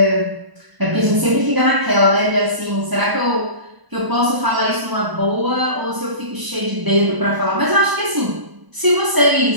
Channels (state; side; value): late; left; 1.0 ms